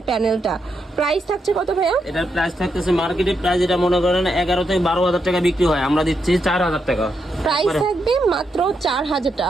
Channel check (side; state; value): both; normal; correlation 0.82